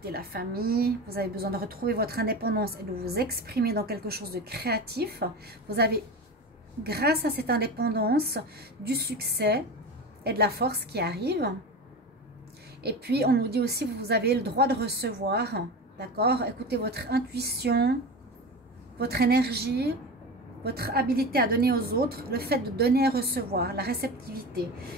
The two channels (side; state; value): both; normal; correlation 0.27